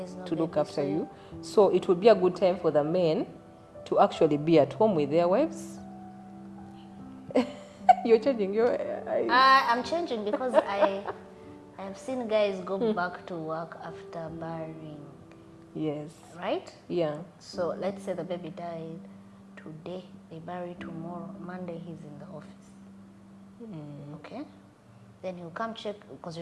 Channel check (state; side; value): identical; both; correlation 1.00